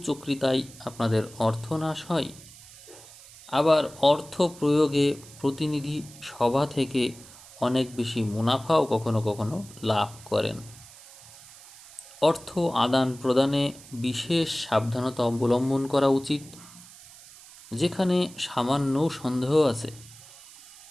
আপনাদের অর্থনাশ হয়, আবার অর্থ প্রয়োগে প্রতিনিধি সভা থেকে অনেক বেশি মুনাফাও কখনো কখনো লাভ করেন। অর্থ আদান প্রদানে বিশেষ সাবধানতা অবলম্বন করা উচিত। যেখানে সামান্য সন্দেহ আছে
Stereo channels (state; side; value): noise; right; hiss, 20 dB below the sound